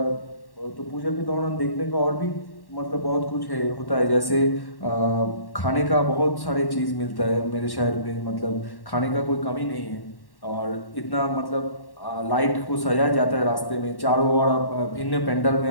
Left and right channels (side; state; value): right; late; 1.1 ms